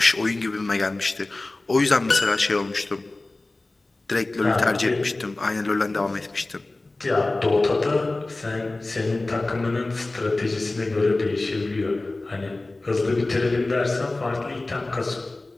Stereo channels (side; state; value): right; quieter; 3.0 dB